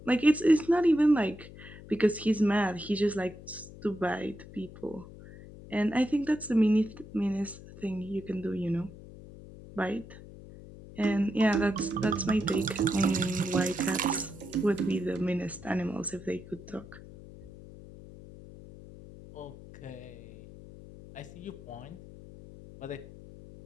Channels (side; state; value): left; noise; hum, 17 dB below the sound